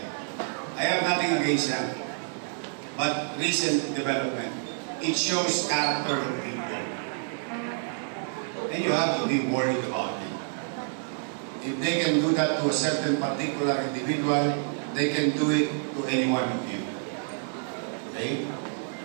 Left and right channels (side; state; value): left; silent; 59 dB below the other